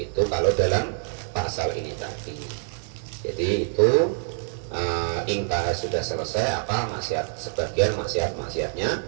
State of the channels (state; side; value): silent; left; digital silence